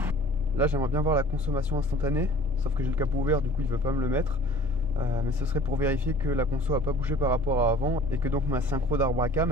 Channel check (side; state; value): both; normal; correlation 0.48